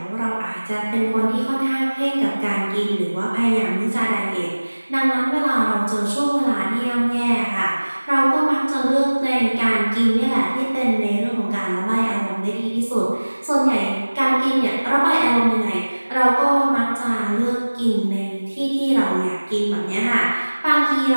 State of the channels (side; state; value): both; inverted; correlation -1.00